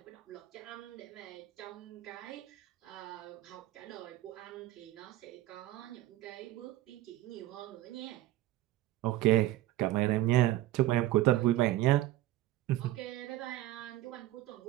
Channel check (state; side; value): quieter; left; 15.2 dB